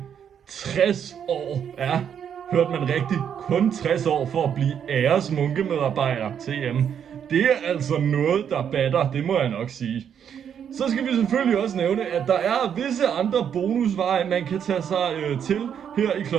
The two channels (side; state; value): left; quieter; 8.4 dB